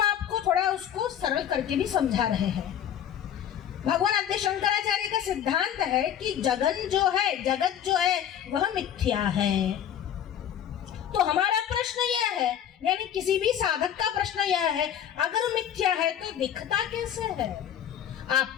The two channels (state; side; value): quieter; right; 9.8 dB